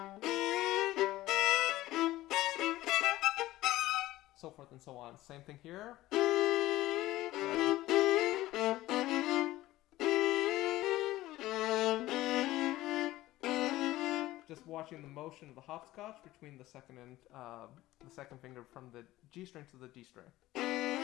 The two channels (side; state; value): right; quieter; 16.5 dB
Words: and so on. Same thing here. Just watching the motion of the hopscotch between the second and the second finger from the G string to the D string.